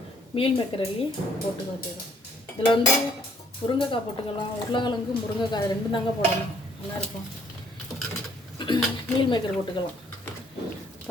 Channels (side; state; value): both; normal; correlation 0.64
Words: மீல் மேக்கர் அள்ளி போட்டுக்க வேண்டியது. இதில் முருங்கைக்காய் போட்டுக்கலாம். உருளைக்கிழங்கு, முருங்கைக்காய் ரெண்டும் தாங்க போடணும். நல்லாயிருக்கும். மீல் மேக்கர் போட்டுக்கலாம்.